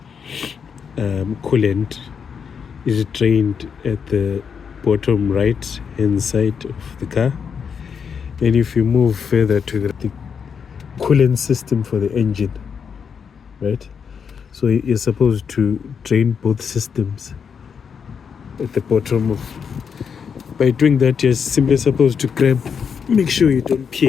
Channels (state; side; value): quieter; right; 6.7 dB